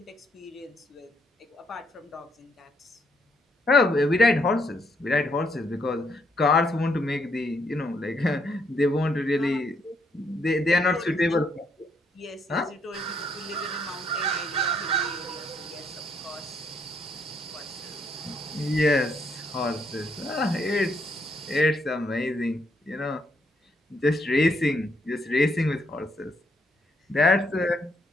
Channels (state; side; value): normal; both; correlation 0.73